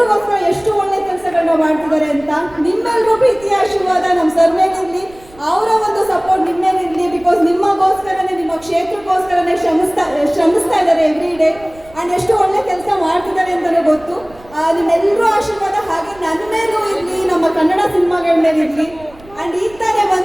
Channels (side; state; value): right; noise; rumble, 24 dB below the sound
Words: ಎಷ್ಟು ಒಳ್ಳೆ ಕೆಲಸಗಳನ್ನ ಮಾಡ್ತಿದ್ದಾರೆ ಅಂತ. ನಿಮ್ಮೆಲ್ಲರೂ ಪ್ರೀತಿಯ ಆಶೀರ್ವಾದ ನಮ್ಮ ಸರ್ ಮೇಲಿರಲಿ, ಅವರ ಒಂದು ಸಪೋರ್ಟ್ ನಿಮ್ಮ ಮೇಲಿರಲಿ. ಬಿಕಾಸ್ ನಿಮಗೋಸ್ಕರನೇ, ನಿಮ್ಮ ಕ್ಷೇತ್ರಕ್ಕೋಸ್ಕರನೇ ಶ್ರಮಿಸ್ತಾ ಇದ್ದಾರೆ ಎವ್ರಿ ಡೇ. ಆ್ಯಂಡ್ ಎಷ್ಟು ಒಳ್ಳೆ ಕೆಲಸ ಮಾಡ್ತಿದ್ದಾರೆ ಅಂತಲೇ ಗೊತ್ತು. ನಿಮ್ಮೆಲ್ಲರೂ ಆಶೀರ್ವಾದ ಹಾಗೆ ನನ್ನ ಮೇಲೂ ಇರಲಿ, ನಮ್ಮ ಕನ್ನಡ ಸಿನಿಮಾಗಳ ಮೇಲೆ ಇರಲಿ. ಆ್ಯಂಡ್ ಈಗ ತಾನೇ